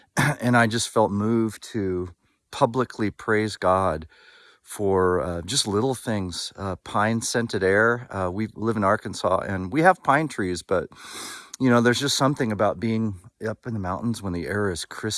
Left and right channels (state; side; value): identical; both; correlation 1.00